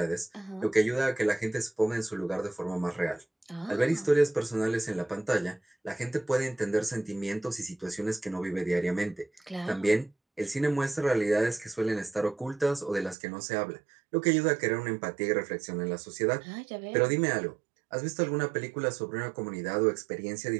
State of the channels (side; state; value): left; drops out; at 13.2 s